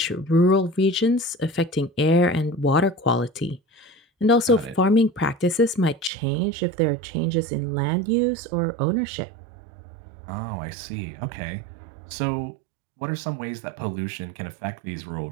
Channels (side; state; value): left; drops out; at 6.1 s